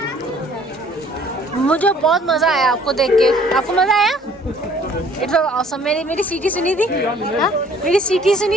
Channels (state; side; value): normal; both; correlation 0.56